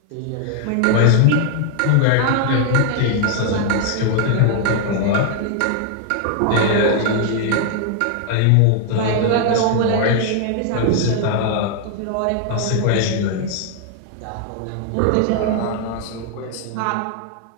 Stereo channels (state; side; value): different; both; correlation 0.00